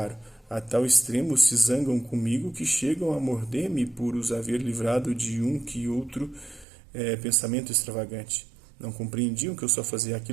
a tal extremo se zangam comigo que chegam a morder-me por os haver livrado de um que outro pensamento extravagante. Não compreendiam que eu só fazia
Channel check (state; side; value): drops out; left; at 6.7 s